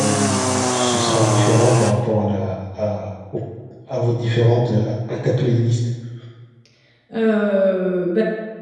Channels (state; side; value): identical; both; correlation 1.00